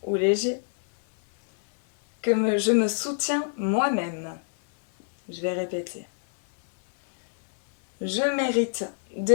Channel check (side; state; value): right; silent; 62 dB below the other